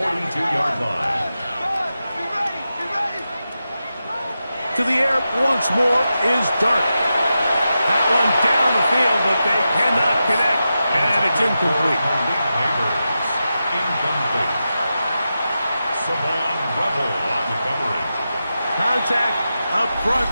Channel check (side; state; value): both; inverted; correlation -0.90